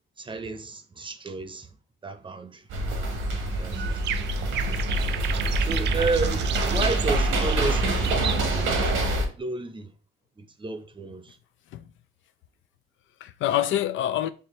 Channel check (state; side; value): normal; both; correlation 0.46